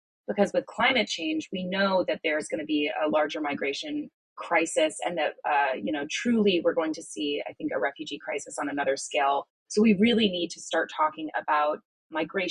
because with climate change, we know that there's going to be a larger migration crisis and that, truly we're going to see, I think, a refugee crisis on another scale. So we really need to start talking about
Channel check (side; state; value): both; identical; correlation 1.00